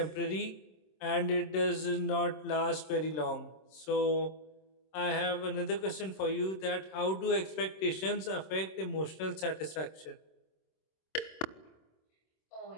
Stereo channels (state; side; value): late; right; 26 ms